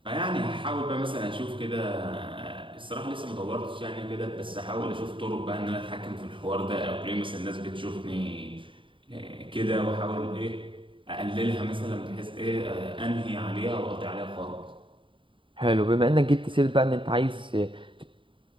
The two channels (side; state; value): left; late; 0.25 ms